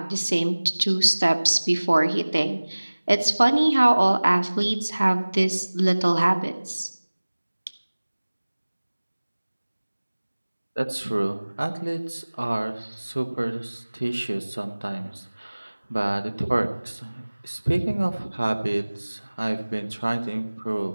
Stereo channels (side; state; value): both; inverted; correlation -1.00